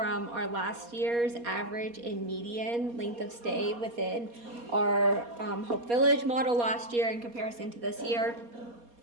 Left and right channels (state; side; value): late; left; 4.2 ms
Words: our last year's average and median length of stay within our Hope Village model last year in comparison to this year.